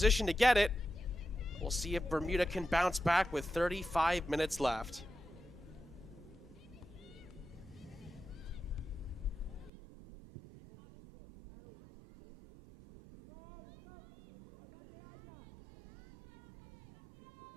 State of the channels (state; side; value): drops out; left; at 9.7 s